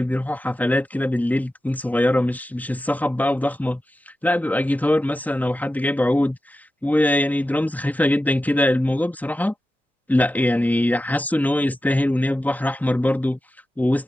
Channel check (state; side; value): normal; both; correlation 0.92